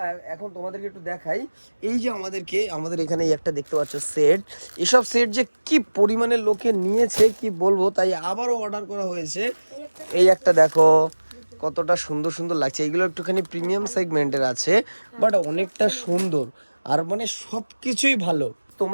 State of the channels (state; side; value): inverted; both; correlation -1.00